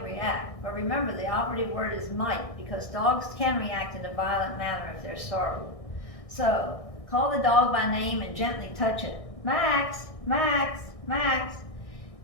react, but remember the operative word is might, because dogs can react in a violent manner if they're startled. So call the dog by name and gently touch it. Max, Max, Max.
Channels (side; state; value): right; late; 1.6 ms